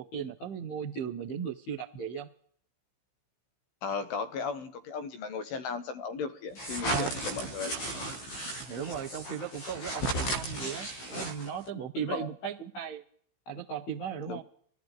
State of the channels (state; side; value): late; right; 16 ms